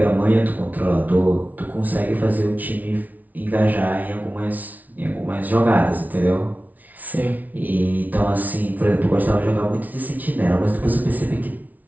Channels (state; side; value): late; left; 0.076 ms